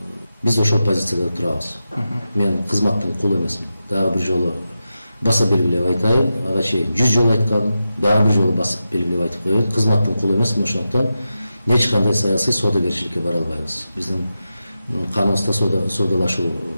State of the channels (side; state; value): both; inverted; correlation -0.91